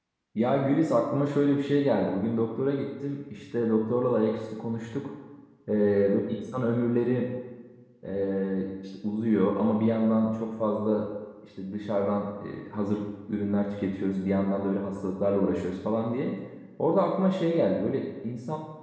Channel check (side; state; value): both; identical; correlation 1.00